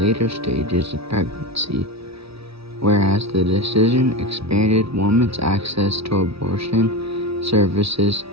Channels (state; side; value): late; left; 0.77 ms